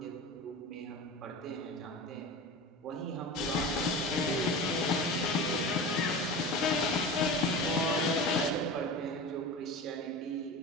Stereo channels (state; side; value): normal; both; correlation 0.30